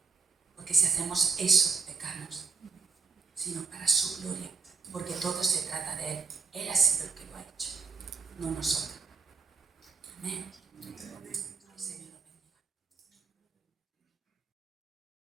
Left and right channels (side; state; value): left; quieter; 5.2 dB